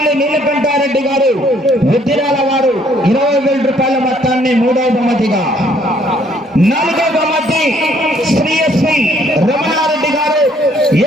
నీలకంఠారెడ్డి గారు, ఉద్దిరాల వారు 20,000 రూపాయల మొత్తాన్ని మూడవ బహుమతిగా, నాలుగవ బహుమతి శ్రీ ఎస్వి రమణారెడ్డి గారు,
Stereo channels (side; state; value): both; normal; correlation 0.64